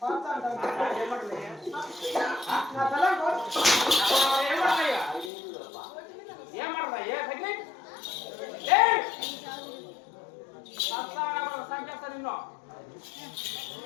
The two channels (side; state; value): right; drops out; at 5.3 s